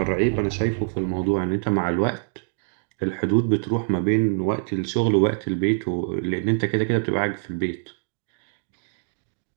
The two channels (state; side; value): silent; left; digital silence